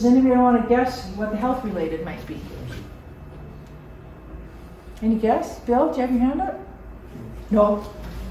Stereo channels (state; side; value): identical; both; correlation 1.00